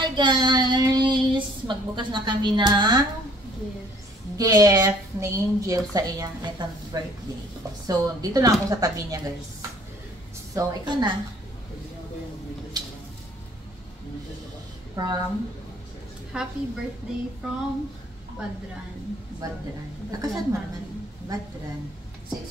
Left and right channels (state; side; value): normal; both; correlation 0.57